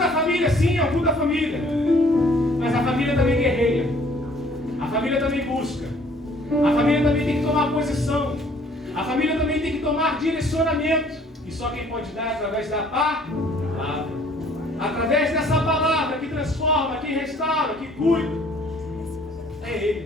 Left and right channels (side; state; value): both; normal; correlation 0.58